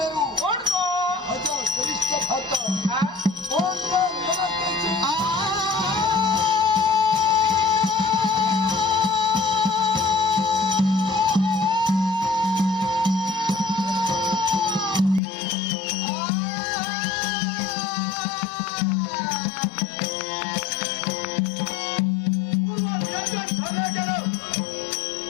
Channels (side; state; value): right; drops out; at 15.2 s